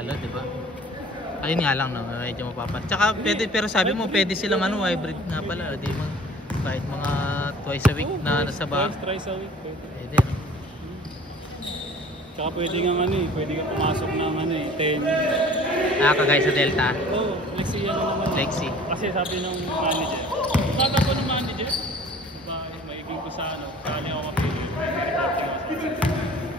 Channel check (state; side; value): normal; both; correlation 0.48